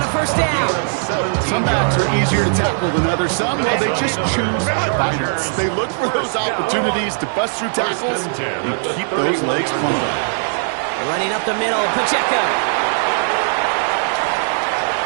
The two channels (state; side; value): silent; left; 61 dB below the other